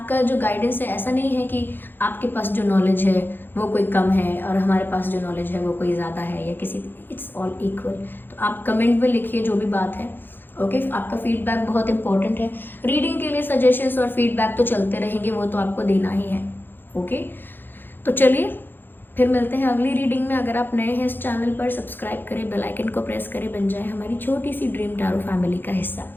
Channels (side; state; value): right; late; 0.097 ms